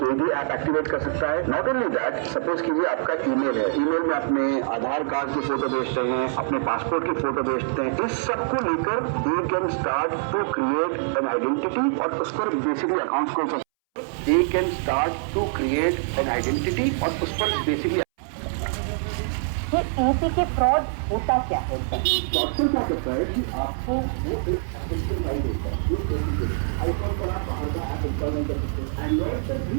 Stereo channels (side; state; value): left; silent; 62 dB below the other